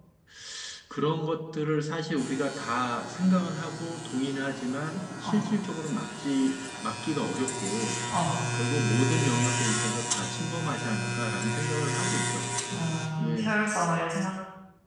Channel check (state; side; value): identical; both; correlation 1.00